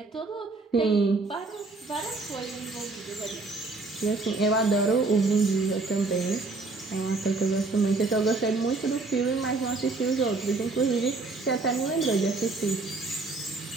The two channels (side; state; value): left; quieter; 3.6 dB